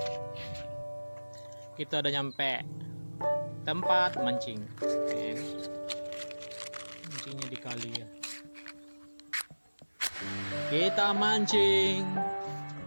Kita udah nyampe tempat mancing. Mancingnya di kali ya. Kita mancing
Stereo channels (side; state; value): both; inverted; correlation -1.00